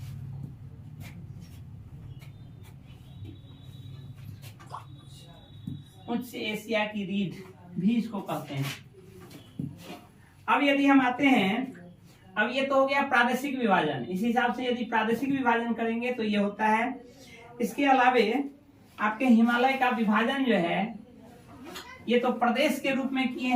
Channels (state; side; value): identical; both; correlation 1.00